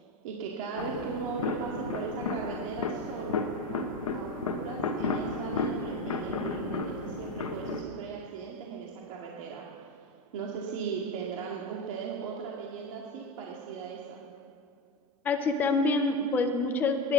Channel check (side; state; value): both; normal; correlation 0.15